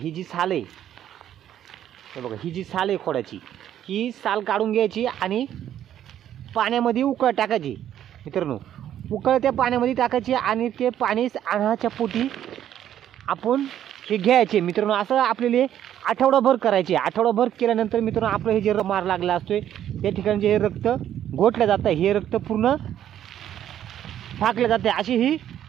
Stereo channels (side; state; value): left; quieter; 10.9 dB